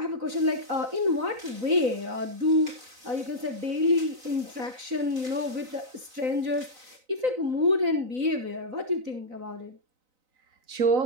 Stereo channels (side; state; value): left; late; 4.0 ms